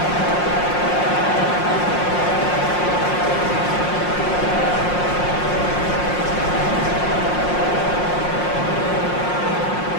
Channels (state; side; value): late; right; 5.6 ms